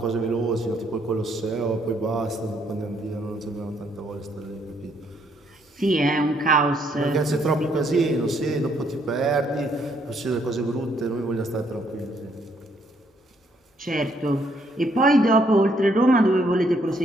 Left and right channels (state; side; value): normal; both; correlation 0.70